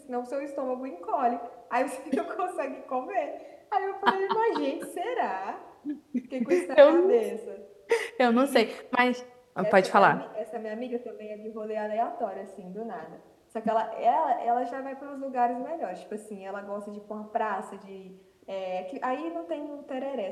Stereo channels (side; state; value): both; identical; correlation 1.00